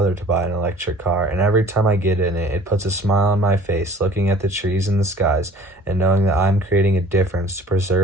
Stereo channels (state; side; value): normal; both; correlation 0.49